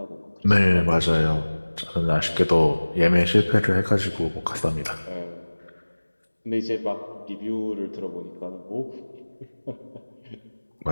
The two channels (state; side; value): inverted; both; correlation -1.00